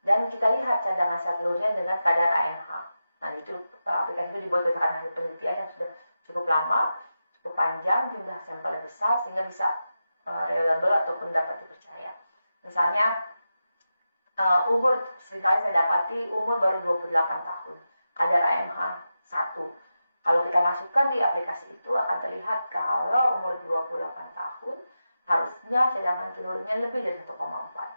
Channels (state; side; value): inverted; both; correlation -0.91